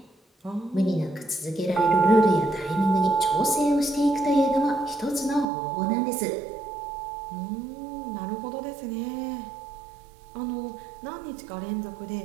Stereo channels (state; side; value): drops out; left; at 5.5 s